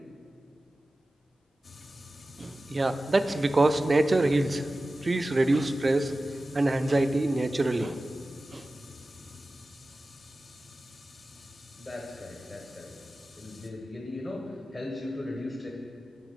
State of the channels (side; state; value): both; normal; correlation 0.95